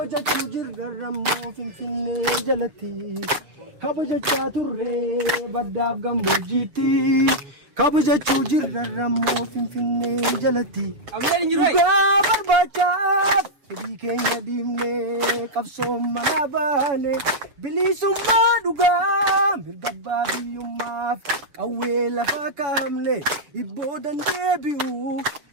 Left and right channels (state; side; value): late; left; 7.3 ms